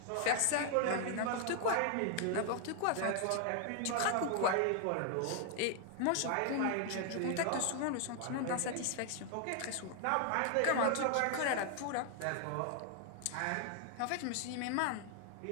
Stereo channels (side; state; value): both; different; correlation 0.00